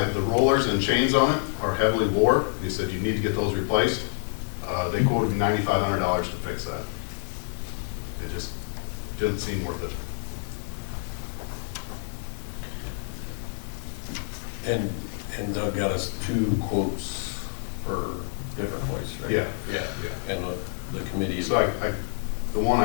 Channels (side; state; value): right; silent; digital silence